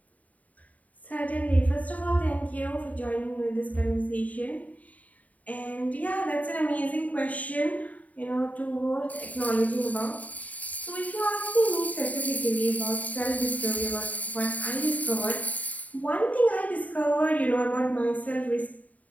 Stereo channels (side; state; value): right; late; 0.072 ms